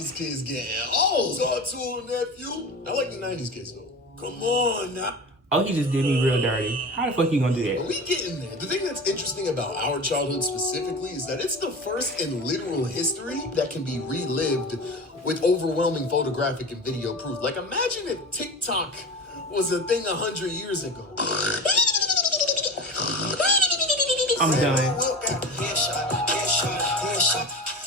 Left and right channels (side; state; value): both; normal; correlation 0.30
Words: kids getting old. Talk to him, nephew. I like the 90s kids, though. Come on, now. Oh, he just did me real dirty. How the fuck you gonna do that? Are we getting there? The thing that's interesting about our childhood specifically is that it's the first in literal history that can be relived with overwhelming photographic and video proof. Like, imagine if TikTok was a thing 100 years ago. I'm done.